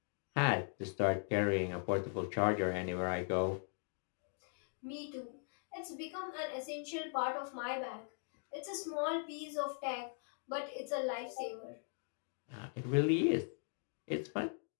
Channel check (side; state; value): right; silent; 51 dB below the other